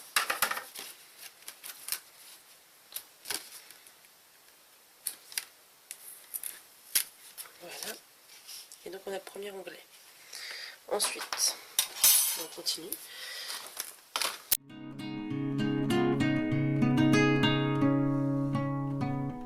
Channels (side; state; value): both; identical; correlation 1.00